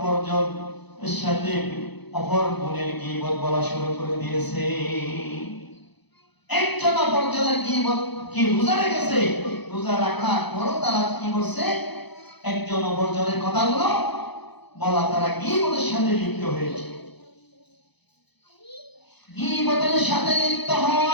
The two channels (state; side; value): late; right; 0.99 ms